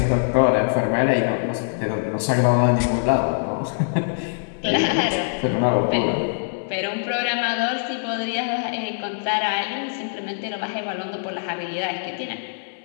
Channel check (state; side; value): silent; right; digital silence